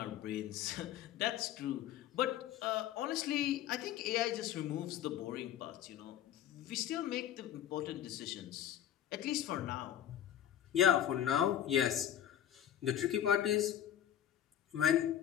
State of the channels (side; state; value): right; quieter; 10.7 dB